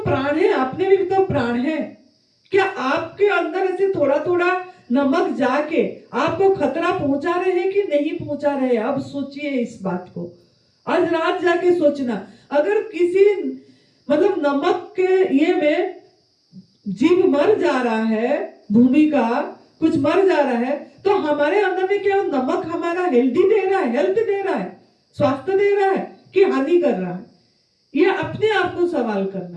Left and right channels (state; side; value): identical; both; correlation 1.00